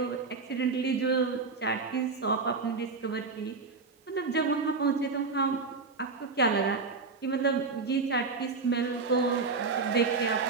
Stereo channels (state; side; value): quieter; left; 4.4 dB